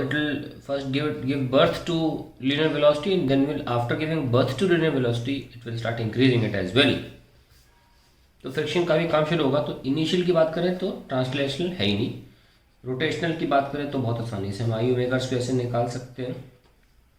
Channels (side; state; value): both; identical; correlation 1.00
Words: it will first give birth to linear velocity, and then will after giving birth to linear velocity it will start increasing it as well. तो friction का भी काम शुरू होगा। तो initial की बात करें तो ट्रांसलेशनल है ही नहीं, रोटेशनल की बात करें तो बहुत आसानी से हम आई ओमेगा स्क्वायर से निकाल सकते हैं,